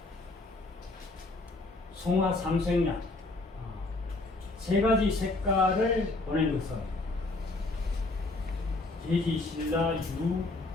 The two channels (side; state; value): right; quieter; 3.0 dB